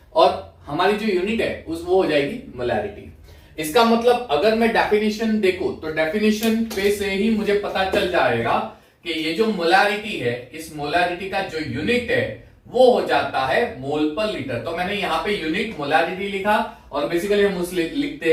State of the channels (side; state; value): both; identical; correlation 1.00